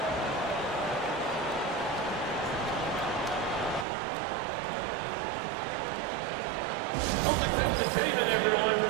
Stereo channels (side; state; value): left; drops out; at 3.9 s